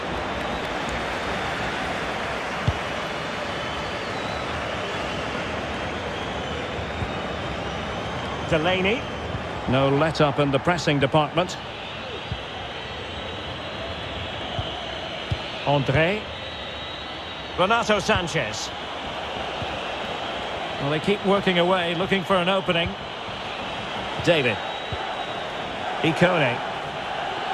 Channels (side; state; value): both; identical; correlation 1.00